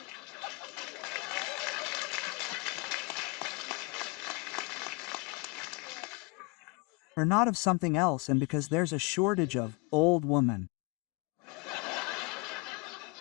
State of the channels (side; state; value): right; quieter; 28.0 dB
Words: Or not of something else, and because there's a shortage of old woman.